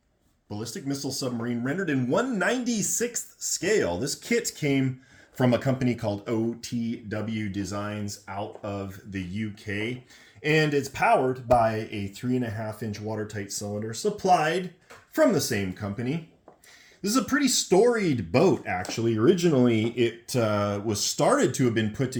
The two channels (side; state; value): both; identical; correlation 1.00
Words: ballistic missile submarine rendered in 1/96th scale. This kit came from a company called OTW Designs out of the UK, and it's powered by a 3.5-inch watertight cylinder supplied from the same company. This is a pretty storied boat, actually. Originally, it was started to have been put